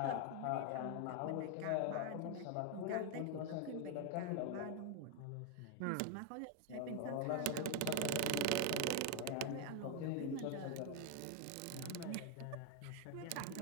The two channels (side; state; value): both; different; correlation 0.01